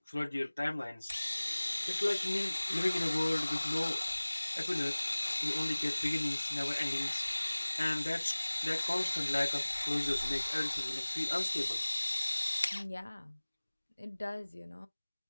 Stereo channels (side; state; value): both; inverted; correlation -1.00